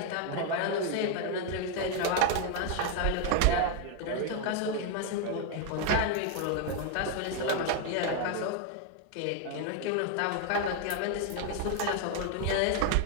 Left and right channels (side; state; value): both; different; correlation 0.01